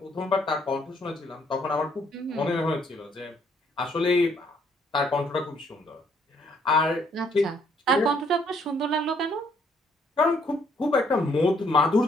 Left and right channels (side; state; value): both; normal; correlation 0.67